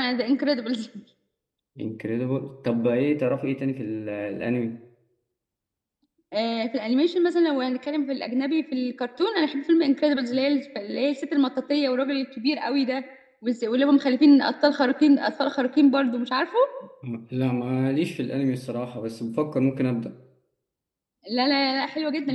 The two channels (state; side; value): identical; both; correlation 1.00